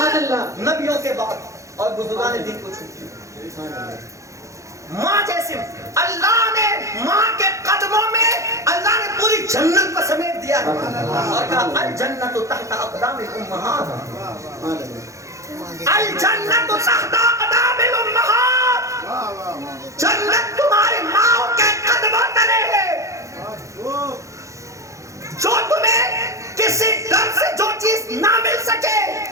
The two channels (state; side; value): late; left; 0.15 ms